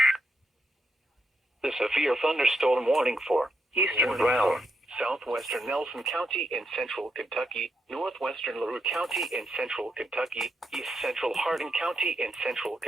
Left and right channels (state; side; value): normal; both; correlation 0.80